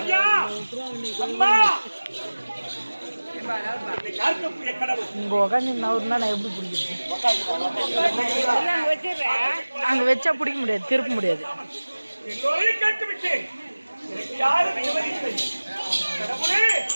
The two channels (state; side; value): inverted; both; correlation -1.00